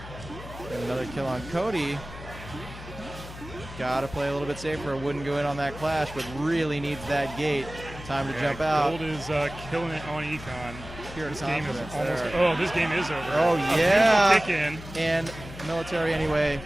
And another kill on Cody. Got to play a little bit safer. Wouldn't go in on that clash, but really needs that gate. Time to jump out. Gold is killing it on Econ. Pure This confidence game is there. this game is over. Oh, A yeah. kick in. And military anyway,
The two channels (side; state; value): left; noise; hum, 13 dB below the sound